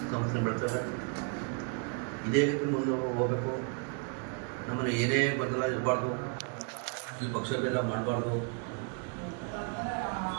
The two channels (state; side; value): quieter; left; 37.4 dB